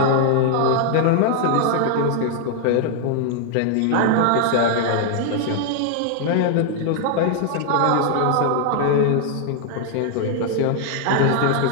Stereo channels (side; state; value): both; different; correlation 0.00